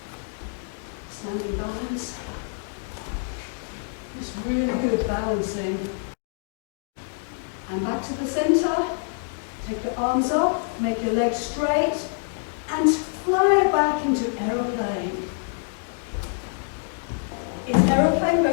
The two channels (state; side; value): silent; right; 61 dB below the other